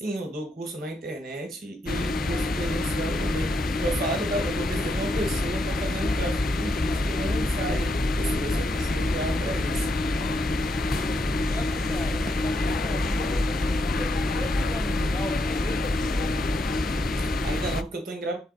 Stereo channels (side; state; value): both; normal; correlation 0.79